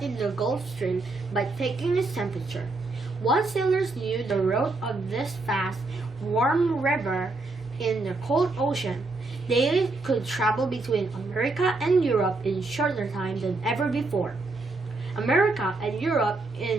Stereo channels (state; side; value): quieter; left; 3.3 dB